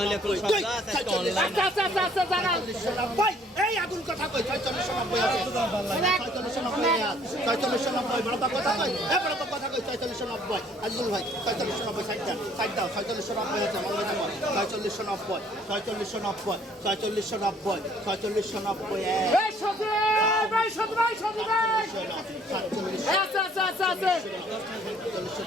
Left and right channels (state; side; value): normal; both; correlation 0.60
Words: 4690 এই আগুন কথা কই 4690 আছে 4690 বড় কথা কই বড় কথা কই 4690 আজুল ভাই 4690 সাইড দাও 4690 আছে মনে রাখো 4690 এই সাথে ভাই আছে